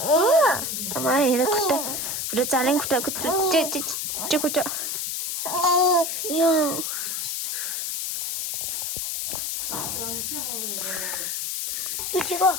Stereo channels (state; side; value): noise; left; hiss, 2 dB below the sound